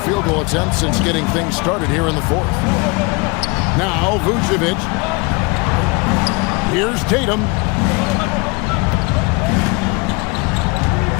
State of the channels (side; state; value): right; quieter; 27.4 dB